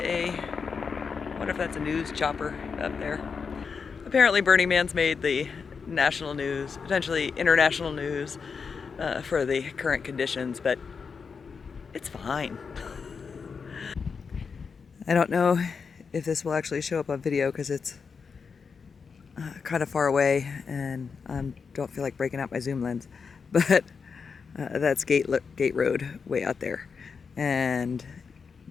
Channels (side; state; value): right; quieter; 5.6 dB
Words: wonder if that's a news chopper up there. Apparently Burning Man's made the national news, potentially international news for the current conditions, but it's fine. I don't know if this will actually show up on video because it's kind of far away and I don't feel like breaking out my zoom lens, but that's Gate Road way out there, and